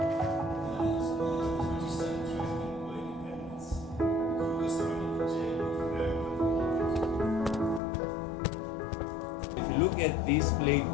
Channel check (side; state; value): right; drops out; at 7.8 s